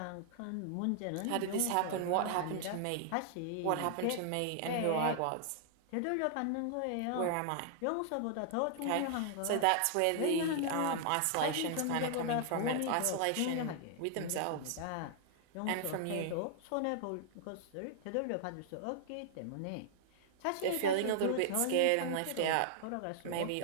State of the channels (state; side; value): different; both; correlation -0.01